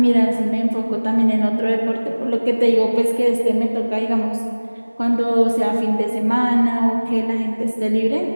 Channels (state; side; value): inverted; both; correlation -1.00